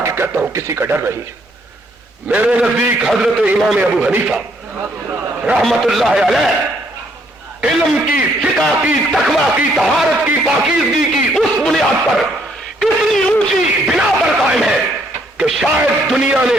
کہتا ہوں کسی کا ڈر نہیں ہے۔ میرے نزدیک حضرت امام ابو حنیفہ رحمت اللہ علیہ علم کی، فقہ کی، تقویٰ کی، طہارت کی، پاکیزگی کی اس بنیاد پر اتنی اونچی بنا پر قائم ہے کہ شاید دنیا نے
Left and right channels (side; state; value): both; normal; correlation 0.69